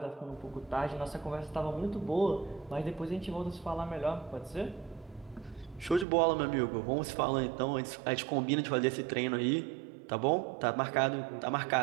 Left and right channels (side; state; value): left; drops out; at 6.1 s